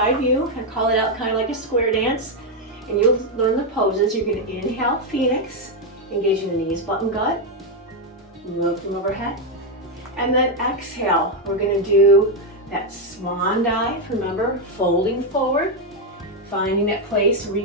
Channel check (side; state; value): both; normal; correlation 0.03